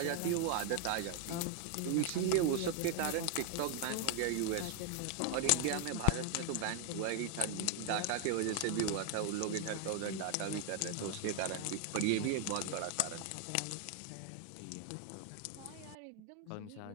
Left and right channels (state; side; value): different; both; correlation 0.00